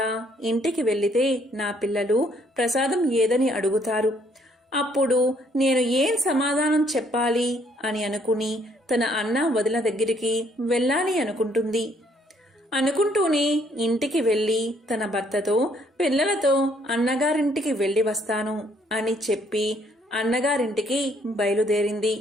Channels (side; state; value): both; normal; correlation 0.66